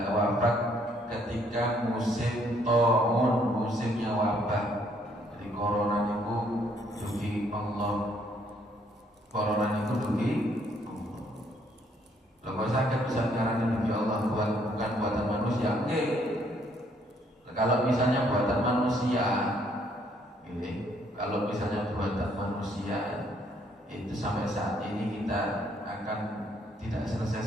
wafat ketika musim taun, musimnya wabah. Jadi corona niku dugi Allah. Corona niku dugi Allah. Lho sakit bisa ngarani dugi Allah bukan buatan manusia. Oke. Kalau misalnya buatan manusia, kalau misalnya buatan manusia itu sampai saat ini kita akan tidak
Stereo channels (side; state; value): both; normal; correlation 0.67